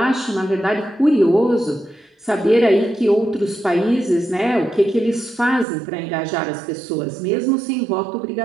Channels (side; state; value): left; drops out; at 5.7 s